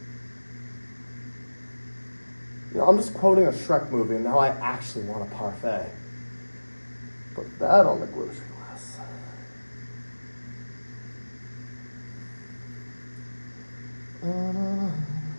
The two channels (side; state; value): both; inverted; correlation -1.00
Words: You know, I'm just quoting a Shrek movie, and now I actually want a parfait. Put that on the grocery list.